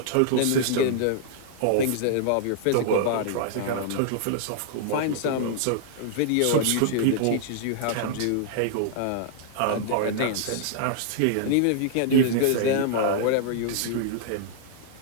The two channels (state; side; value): different; both; correlation -0.01